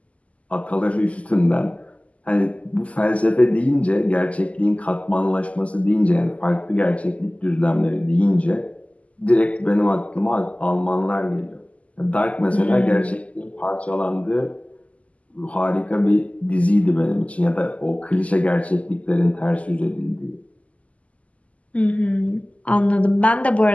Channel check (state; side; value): late; right; 0.068 ms